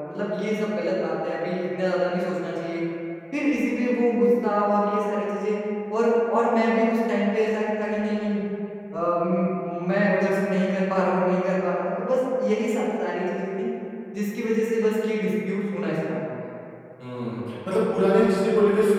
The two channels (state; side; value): identical; both; correlation 1.00